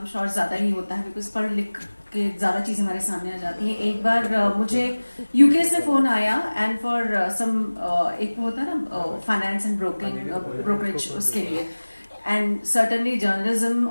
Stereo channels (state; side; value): inverted; both; correlation -1.00